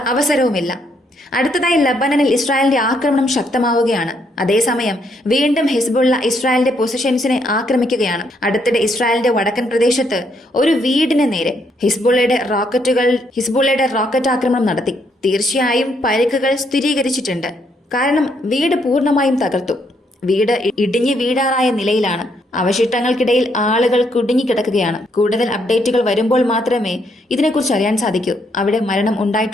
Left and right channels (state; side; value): normal; both; correlation 0.73